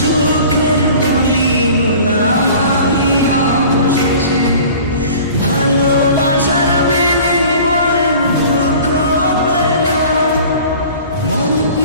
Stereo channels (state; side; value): inverted; both; correlation -0.44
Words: বলি হলাম আমি অবশেষে। ভালোবাসার বিনিময়ে দুঃখ পেলাম, মন